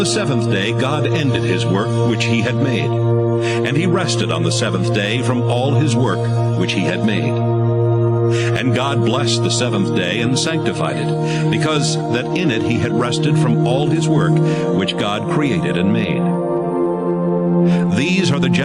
seventh day God ended his work which he had made. And he rested on the seventh day from all his work which he had made. And God blessed the seventh day and sanctified it, because that in it he had rested from all his work which God created and made. These are the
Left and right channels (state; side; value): identical; both; correlation 1.00